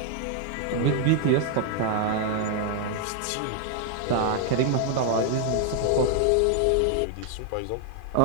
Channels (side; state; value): both; different; correlation 0.00